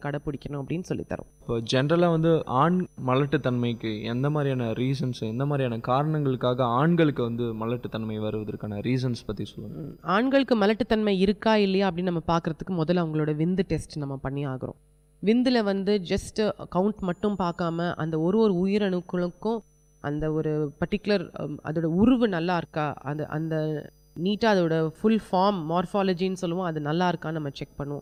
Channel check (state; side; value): identical; both; correlation 1.00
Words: கடைப்பிடிக்கணும் அப்படின்னு சொல்லித்தரோம். இப்போ ஜென்ரலாக வந்து ஆண் மலட்டுத்தன்மைக்கு எந்த மாதிரியான ரீசன்ஸ், எந்த மாதிரியான காரணங்களுக்காக ஆண்களுக்கு வந்து மலட்டுத்தன்மை வருவதற்கான ரீசன்ஸ் பற்றி சொல்லுங்கள். ஆண்களுக்கு மலட்டுத்தன்மை இருக்கா இல்லையா அப்படின்னு நம்ம பார்க்குறதுக்கு முதல்ல அவங்களோட விந்து டெஸ்ட் நம்ம பண்ணி ஆகிறோம். விந்தில் வந்து ஜஸ்ட் கவுண்ட் மட்டும் பார்க்காம அந்த ஒரு உயிரணுக்களுக்கும் அந்த ஒரு பர்டிகுலர் அதோட உருவு நல்லா இருக்கா, அந்த நீட்டாக அதோட ஃபுல் ஃபார்ம் மார்ஃபாலஜின்னு சொல்லுவோம், அது நல்லா இருக்கான்னு நம்ம செக்